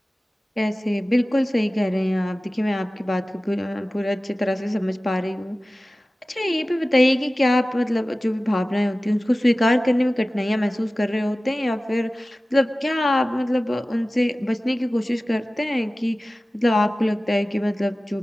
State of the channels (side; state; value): both; normal; correlation 0.97